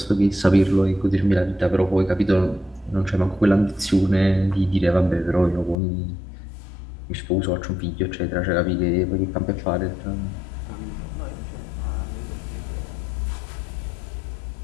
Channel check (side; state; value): right; drops out; at 5.8 s